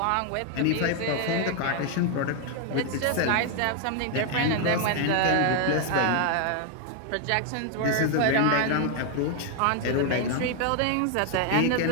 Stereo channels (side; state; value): both; different; correlation 0.00